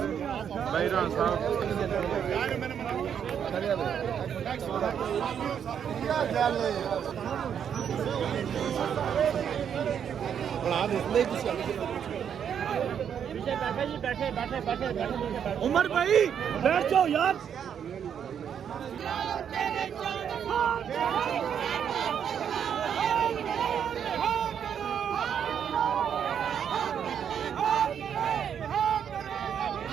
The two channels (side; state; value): left; quieter; 8.3 dB